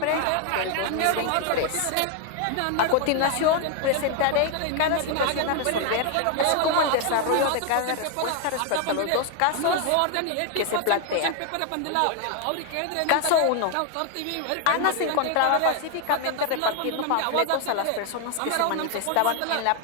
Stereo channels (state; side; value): different; both; correlation 0.01